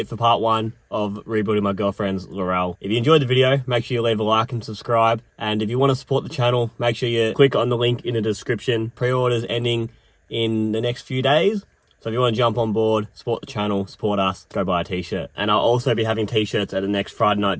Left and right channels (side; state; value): both; identical; correlation 1.00